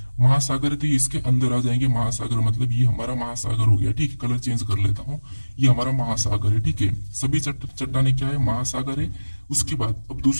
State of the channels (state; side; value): inverted; both; correlation -1.00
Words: महासागर है तो ये इसके अंदर आ जाएंगे, महासागर मतलब ये हमारा महासागर हो गया, ठीक है। कलर चेंज कर लेता हूँ, ये हमारा महासागर है, ठीक है। सभी चट्टाने क्या है, महासागर है। उसके बाद अब